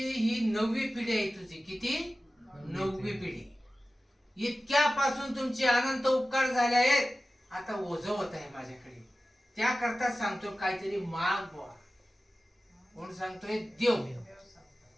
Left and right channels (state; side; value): normal; both; correlation 0.96